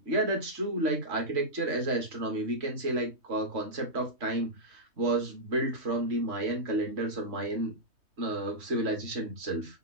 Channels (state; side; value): late; left; 3.2 ms